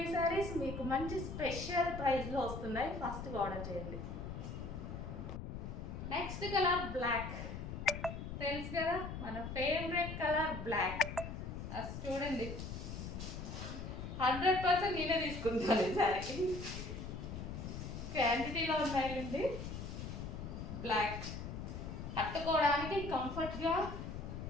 ఈ శారీస్. మీకు మంచి స్పెషల్ ప్రైస్లో వస్తున్నాయి, ఫాస్ట్గా ఆర్డర్ చేయండి. Next colour black. తెలుసు కదా మన ఫేవరెట్ కలర్ బ్లాక్. అది చూడండి, 100% నేనే తీసుకుంటాను ఈ శారీ. క్వాంటిటీలో ఉన్నాయండి. బ్లాక్ కట్టుకోవడానికి కంఫర్ట్గా,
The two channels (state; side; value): noise; left; rumble, 7 dB below the sound